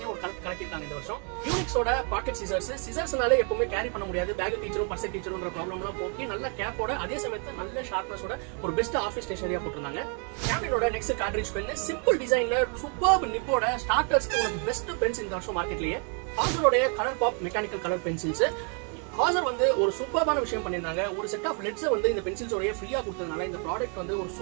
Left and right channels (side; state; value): left; quieter; 39.8 dB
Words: ஒரு கலக்கிட்டாங்க இந்த வருஷம். யூனிக்ஸோட பாக்கெட் சிசர்ஸ்னால எப்பவுமே கேரி பண்ண முடியாது, பேக் டீச்சரும் பர்ஸ் டீச்சருன்ற ப்ராப்ளம்லாம் போக்கி நல்ல கேப்போட அதே சமயத்துல நல்ல ஷார்ப்னஸோட ஒரு பெஸ்ட் ஆஃபீஸ் ஸ்டேஷனரியா போட்டிருந்தாங்க. கேம்பினோட நெக்ஸ்ட் கார்ட்ரிட்ஜ் பென் சிம்பிள் டிசைன்ல சூப்பர் நிப்போட ஸ்டார்டர்ஸ்க்கு ஒரு பெஸ்ட் பென்ஸ் இந்த வருஷம் மார்க்கெட்லயே. ஹாசரோட colour pop mechanical colour pencils Hauser வந்து ஒரு சூப்பர்பான விஷயம் பண்ணிருந்தாங்க. ஒரு செட் ஆஃப் லெட்ஸ் வந்து இந்த பென்சில்ஸோடய ஃப்ரீயா கொடுத்ததுனால இந்த ப்ராடக்ட் வந்து ஒரு